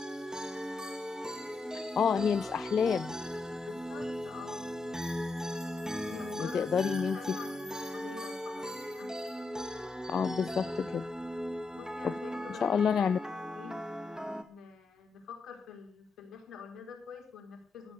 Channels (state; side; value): quieter; right; 4.3 dB